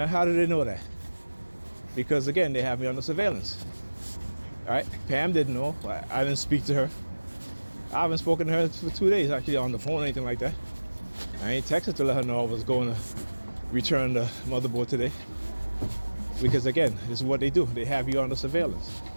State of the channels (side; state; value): both; inverted; correlation -1.00